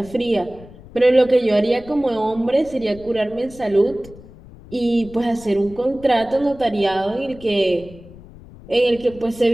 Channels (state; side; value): noise; left; rumble, 19 dB below the sound